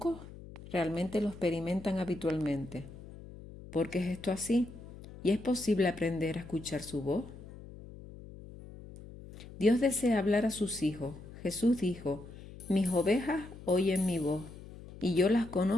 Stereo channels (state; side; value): noise; left; hum, 16 dB below the sound